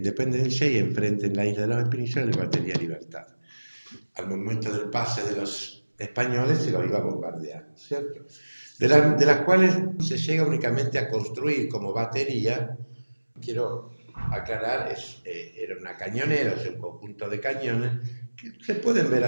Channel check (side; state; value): both; inverted; correlation -1.00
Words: y enfrente en la isla de la Espinillas la batería Libertad. Al momento del pase de los españoles se los iba a bombardear, ¿cierto? De las cuales se llega únicamente a construir como batería, quiero aclarar, era una cañonera, o sea, un conjunto de cañones, que se pueden ver